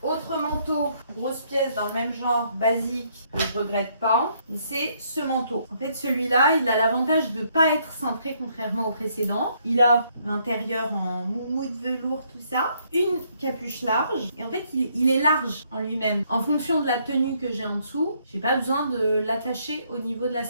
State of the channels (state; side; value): inverted; both; correlation -0.70